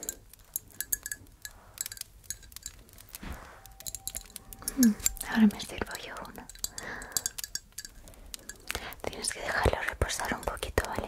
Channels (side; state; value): both; identical; correlation 1.00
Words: Ahora me sirvo yo uno. Tienes que dejarlo reposar un poquito,